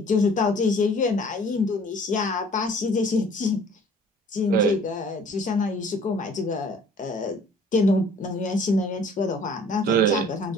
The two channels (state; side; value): normal; both; correlation 0.52